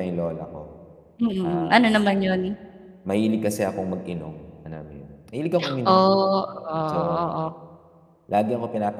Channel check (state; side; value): identical; both; correlation 1.00